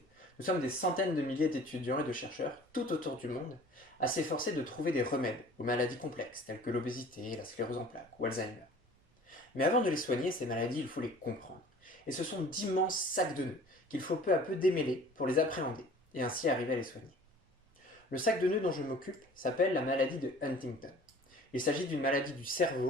Nous sommes des centaines de milliers d'étudiants et de chercheurs, tout autour du monde, à s'efforcer de trouver des remèdes aux maladies complexes telles que l'obésité, la sclérose en plaques ou Alzheimer. Mais avant de les soigner, ces maladies, il faut les comprendre. Et ce sont d'immenses sacs de nœuds qu'il faut peu à peu démêler pour les appréhender et ainsi arriver à les soigner. Le sac de nœuds dont je m'occupe s'appelle la maladie de Huntington. Il s'agit d'une maladie du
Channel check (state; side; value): normal; both; correlation 0.47